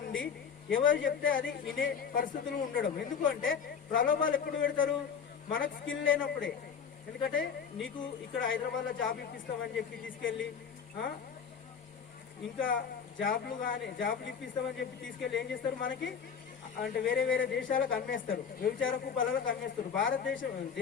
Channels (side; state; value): right; quieter; 6.8 dB